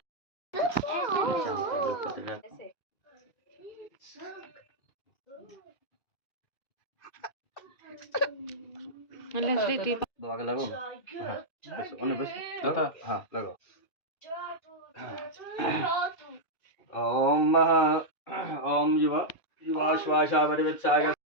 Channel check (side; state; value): right; late; 2.3 ms